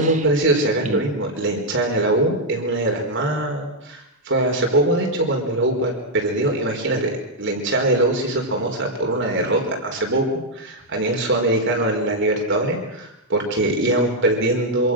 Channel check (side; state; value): both; normal; correlation -0.02